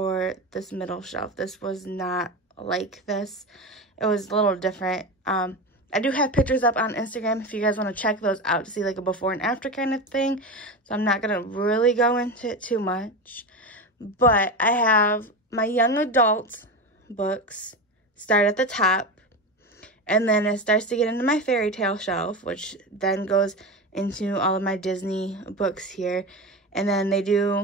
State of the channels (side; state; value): both; normal; correlation 0.22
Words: this middle shelf. This was not like this. It was a little different. I do have pictures up on Instagram if you guys want to check those out to see like a before and after kind of thing. So I'm not going to really go into it too much. But I have my young adult books start at the top. And then it starts to get into my fairy tale shelf, which then goes into all of my Disney books here. And then they